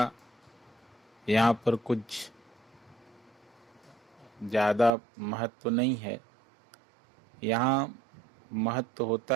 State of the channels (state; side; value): drops out; left; at 4.9 s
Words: यहाँ पर कुछ ज़्यादा महत्व नहीं है। यहाँ महत्व